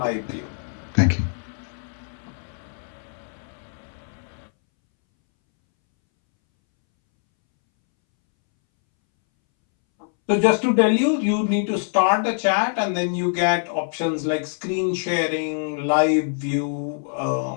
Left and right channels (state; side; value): silent; right; 62 dB below the other